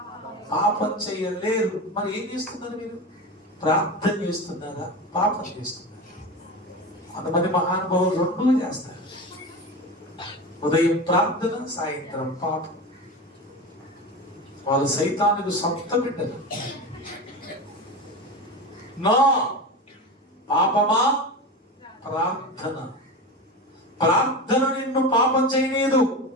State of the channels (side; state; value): both; normal; correlation 0.26